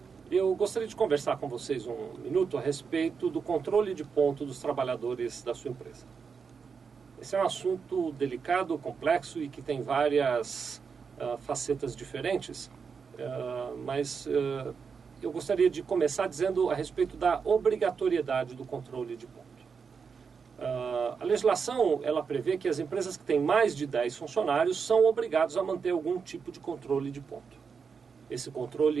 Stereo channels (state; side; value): quieter; left; 5.8 dB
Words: Eu gostaria de conversar com vocês um minuto a respeito do controle de ponto dos trabalhadores da sua empresa. Esse é um assunto delicado, complexo e que tem várias facetas diferentes, mas eu gostaria de começar dizendo a respeito da obrigatoriedade do controle de ponto. A legislação ela prevê que as empresas que têm mais de 10 funcionários são obrigados a manter algum tipo de controle de ponto. Esse